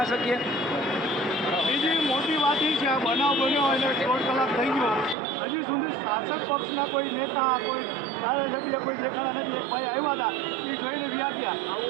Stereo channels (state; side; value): drops out; left; at 5.2 s